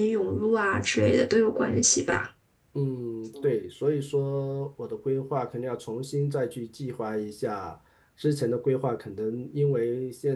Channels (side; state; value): both; identical; correlation 1.00